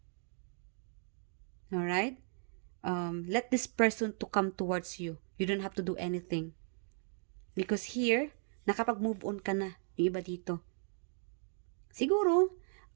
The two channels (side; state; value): left; silent; 54 dB below the other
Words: Alright? Let this person to come towards you. You don't have to do anything. Because here, nakapag-move on ka na. Yung iba dito. Siguro,